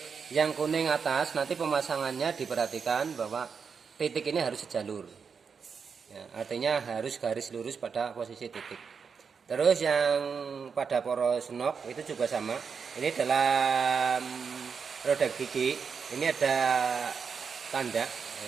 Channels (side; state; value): left; quieter; 6.0 dB